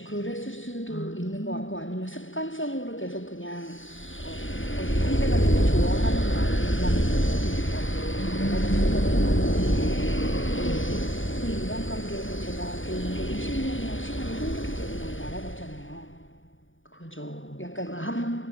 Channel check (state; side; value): late; right; 0.57 ms